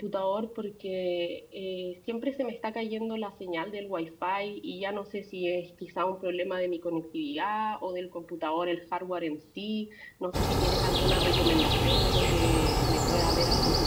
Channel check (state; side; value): identical; both; correlation 1.00